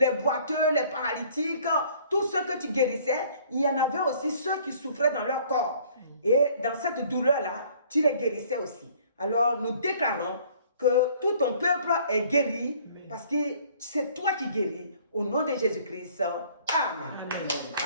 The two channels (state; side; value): inverted; both; correlation -0.56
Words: boiteux, les paralytiques, tous ceux que tu guérissais, il y en avait aussi ceux qui souffraient dans leur corps. Et dans cette douleur-là, tu les guérissais aussi. Alors, nous déclarons que tout ton peuple est guéri parce que c'est toi qui guéris. Au nom de Jésus-Christ. Amen. Amen.